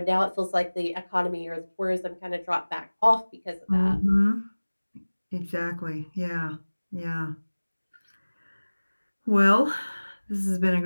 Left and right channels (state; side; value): inverted; both; correlation -1.00